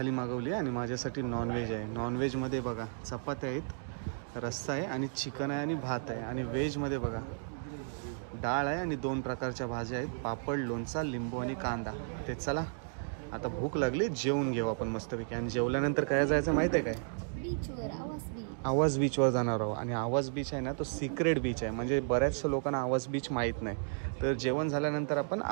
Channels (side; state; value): left; silent; digital silence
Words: मागवली आणि माझ्यासाठी नॉनव्हेज आहे. नॉनव्हेजमध्ये बघा चपात्या आहेत, रस्सा आहे आणि चिकन आहे आणि भात आहे. आणि व्हेजमध्ये बघा डाळ आहे आणि 2 प्रकारच्या भाज्या आहेत, पापड, लोणचा, लिंबू आणि कांदा. ते चला आता भूक लागली, जेवून घेऊ आपण मस्तपैकी. आणि जेवल्यानंतर काय जायचं माहिती आहे काय? बीचवर, आवाज बीच. आवाज बीचवर जाणार आहोत. आणि आवाज बीच आहे ना तो सिक्रेट बीच आहे, म्हणजे बऱ्याचशा लोकांना आवाज बीच माहीत नाही. तर जेवण झाल्यानंतर आपण